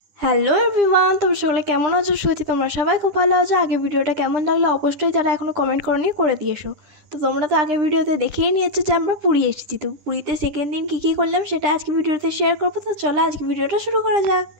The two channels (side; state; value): left; late; 9.9 ms